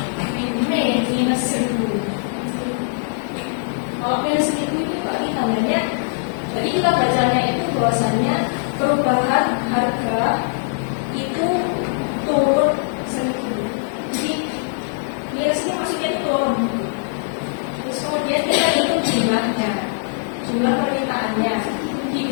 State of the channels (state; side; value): silent; right; 65 dB below the other